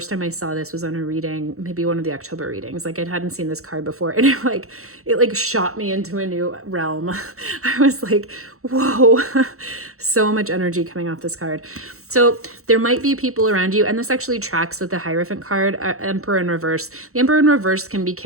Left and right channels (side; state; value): left; late; 0.64 ms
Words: time I saw this was on a reading, maybe one of the October readings. Like I hadn't seen this card before and it shot me into a new realm. I was like, whoa, so much energy coming off this card. So there might be people around you, and this actually tracks with the Hierophant card, Emperor in reverse. The Emperor in reverse can be